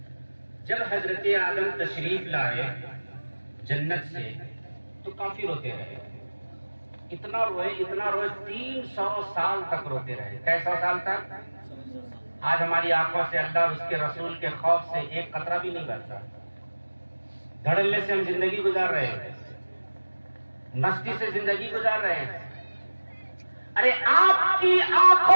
جب حضرت آدم تشریف لائے جنت سے تو کافی روتے رہے، اتنا روئے 300 سال تک روتے رہے۔ کیسا سال تک؟ آج ہماری آنکھوں سے اللہ اور اس کے رسول کے خوف سے ایک قطرہ بھی نہیں بہتا، دھڑلے سے ہم زندگی گزار رہے ہیں، مستی سے زندگی گزار رہے ہیں۔ ارے آپ کی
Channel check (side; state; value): both; inverted; correlation -1.00